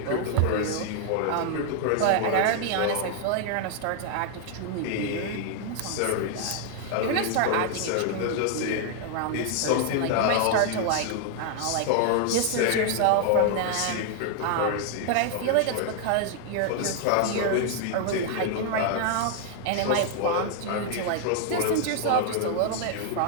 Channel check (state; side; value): different; both; correlation 0.00